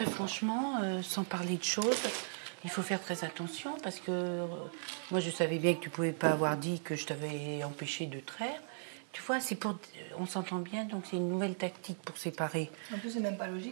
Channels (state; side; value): silent; left; 53 dB below the other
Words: franchement, sans parler de choses, il faut faire très attention parce que moi, je savais bien que tu pouvais pas avoir dit que je t'avais empêché de traire. Tu vois, on s'entend bien, donc c'est une nouvelle tactique pour séparer. En plus, c'est même pas